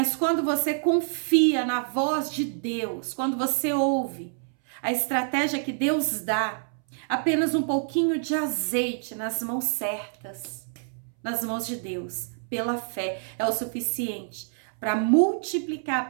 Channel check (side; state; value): left; silent; 60 dB below the other